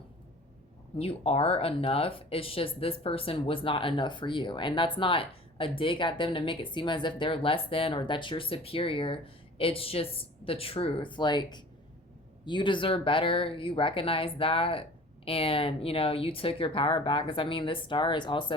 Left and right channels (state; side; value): normal; both; correlation 0.44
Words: you are enough. It's just this person was not enough for you. And that's not a dig at them to make it seem as if they're less than or that you're superior. It's just the truth. Like, you deserve better. You recognize that. And, you took your power back. Because, I mean, this star is